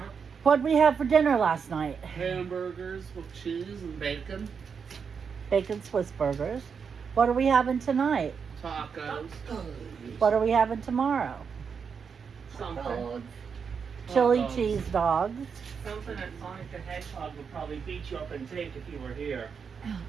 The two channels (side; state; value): left; quieter; 6.2 dB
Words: What'd we have for dinner last night? Hamburgers with cheese and bacon. Bacon Swiss burgers. What are we having tonight? Tacos. What are we having tomorrow? Something. Chili Hot dogs. cheese dogs. Something that Sonic the Hedgehog would probably beat you up and take if you were here.